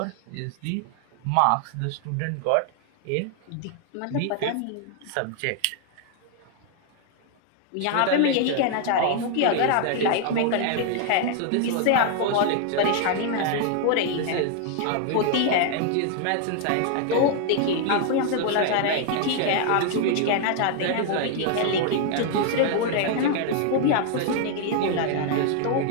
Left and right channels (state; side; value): different; both; correlation 0.00